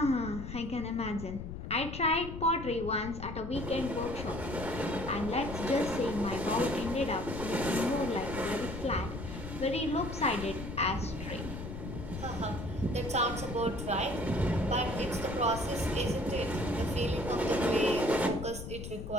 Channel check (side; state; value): left; noise; rumble, 8 dB below the sound